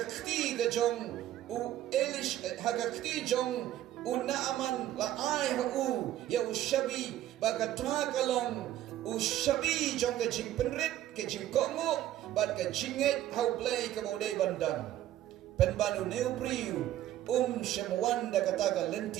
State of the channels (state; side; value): quieter; left; 13.0 dB